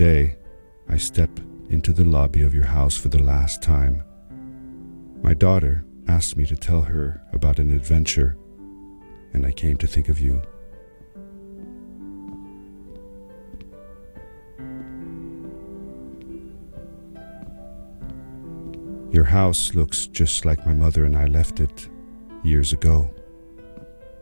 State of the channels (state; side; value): inverted; both; correlation -1.00